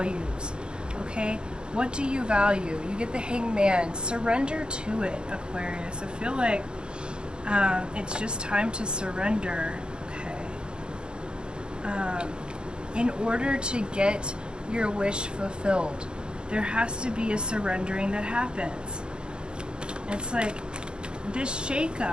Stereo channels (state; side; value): late; left; 0.051 ms